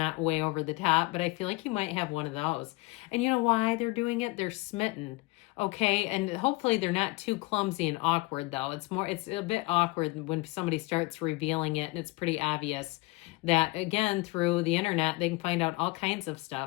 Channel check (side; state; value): right; quieter; 23.2 dB